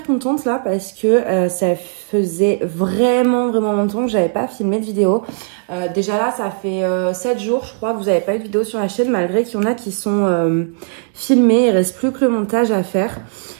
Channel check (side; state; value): left; silent; digital silence